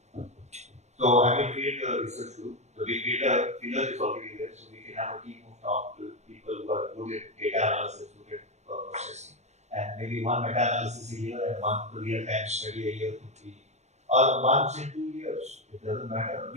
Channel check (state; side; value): late; left; 0.33 ms